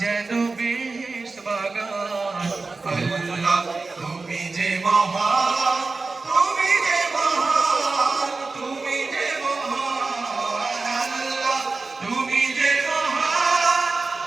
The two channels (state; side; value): quieter; left; 3.8 dB